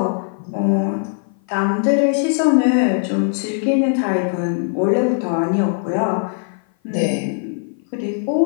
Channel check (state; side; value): silent; right; 56 dB below the other